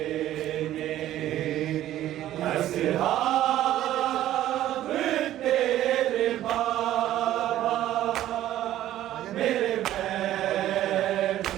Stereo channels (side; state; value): left; quieter; 13.2 dB